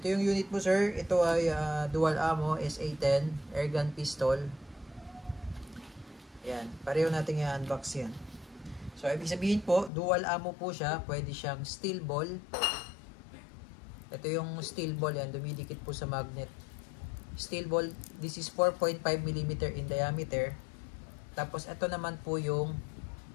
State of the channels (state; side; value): drops out; right; at 9.9 s